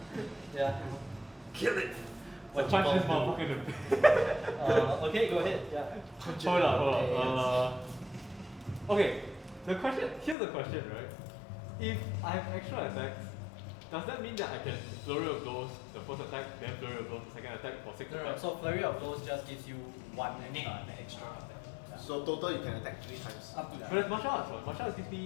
Yeah. Kill it. What Punch you this gonna motherfucker in the do? Okay, go ahead. Yeah. Hold on. Okay, here's the question, right? If I have extra attacks, does that mean that I can flurry of blows the first attack, then flurry of blows the second attack for 6 attacks? So flurry of blows just gives you one Extra. Yeah. So total you can attack 3 times. Up to that. But it's martial arts, right? Martial arts gives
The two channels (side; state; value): right; drops out; at 10.4 s